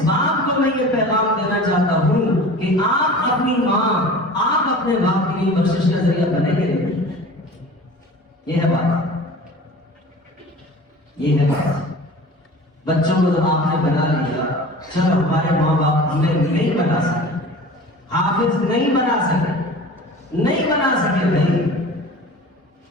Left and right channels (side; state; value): both; normal; correlation 0.39